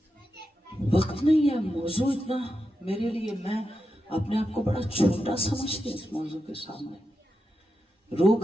وقت نہیں ہے، موضوع اتنا میرے لیے، میں اپنے آپ کو بڑا چھوٹا سمجھتی ہوں اس موضوع کے سامنے. رو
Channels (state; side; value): normal; both; correlation 0.88